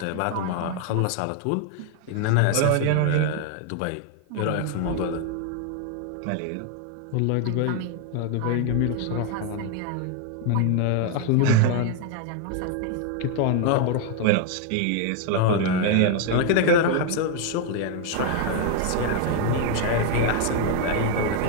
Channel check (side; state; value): both; different; correlation 0.01